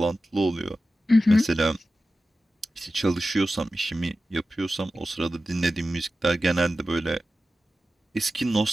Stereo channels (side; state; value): both; normal; correlation 0.93